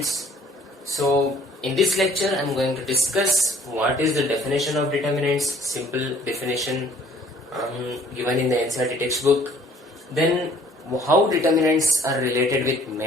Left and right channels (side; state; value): both; normal; correlation 0.56